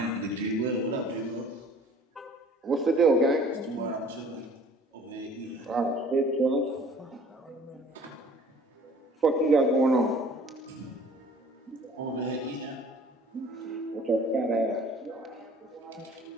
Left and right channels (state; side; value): normal; both; correlation 0.51